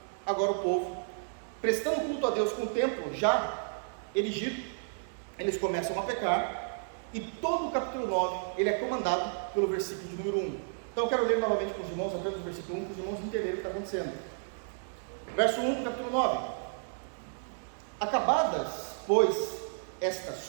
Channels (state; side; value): silent; left; digital silence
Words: agora o povo, prestando culto a Deus com o templo já erigido, eles começam a pecar, e todo o capítulo 9, ele é comandado pelo versículo de número 1. Então eu quero ler novamente com os irmãos, apenas o versículo 1, para os irmãos entenderem o que está acontecendo. Verso 1 do capítulo 9. Acabadas, pois, estas